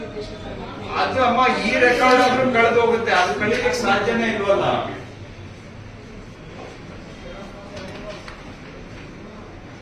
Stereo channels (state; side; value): identical; both; correlation 1.00